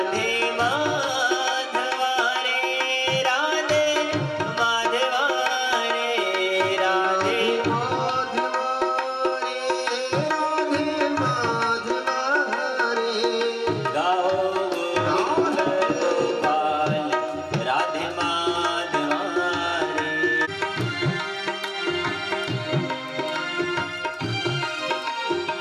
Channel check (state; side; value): identical; both; correlation 1.00